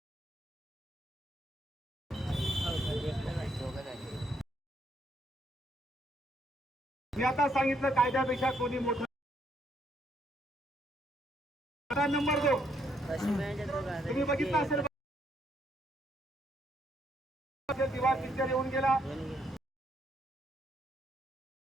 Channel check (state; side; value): normal; both; correlation 0.73